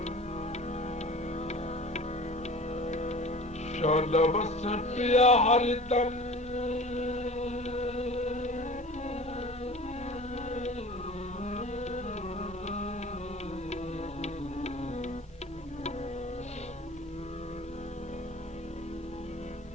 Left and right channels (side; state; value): both; normal; correlation 0.41